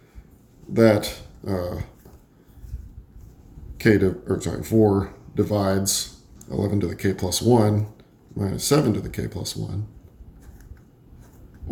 that 4 divides 11 to the k plus 1 minus 7 to the k plus 1,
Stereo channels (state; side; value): identical; both; correlation 1.00